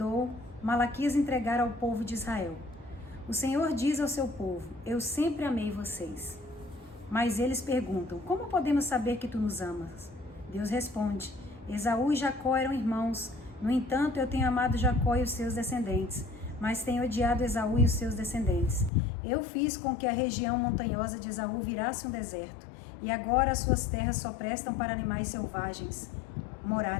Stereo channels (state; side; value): drops out; right; at 18.9 s